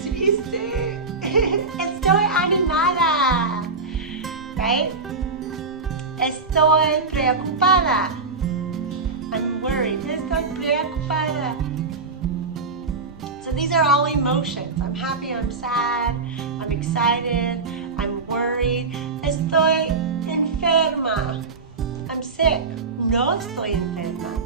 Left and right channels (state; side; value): quieter; left; 4.2 dB